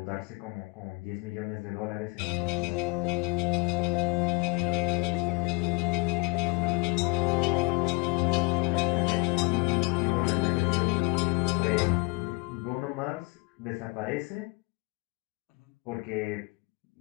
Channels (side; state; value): right; quieter; 27.0 dB